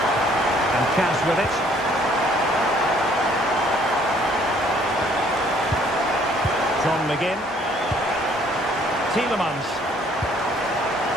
And Cash with it. John McGinn. Tielemans.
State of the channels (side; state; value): both; normal; correlation 0.61